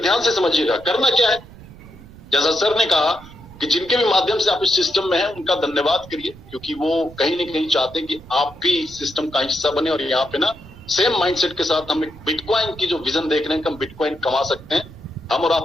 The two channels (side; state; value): right; noise; rumble, 19 dB below the sound